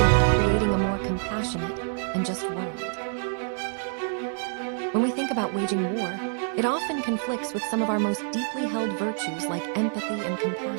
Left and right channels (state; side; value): silent; left; 60 dB below the other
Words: creating a more compassionate and just world. When we think about waging war, it often conflicts with some of our most deeply held virtues like empathy and